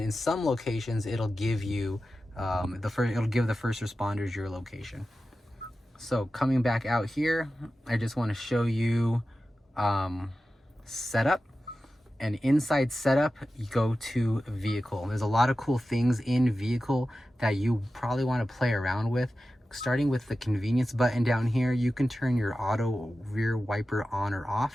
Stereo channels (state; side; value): normal; both; correlation 0.94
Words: some locations, it'll give you it'll give the first responders your location. So coming back out here, I just want to show you setup. And inside setup, you go to vehicle. There's a lot of cool things in vehicle that you probably want to play around with. Starting with the convenience button down here, you can turn your auto rear wiper on or